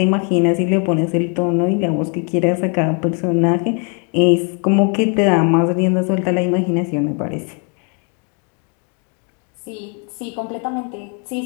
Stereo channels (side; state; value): right; quieter; 38.0 dB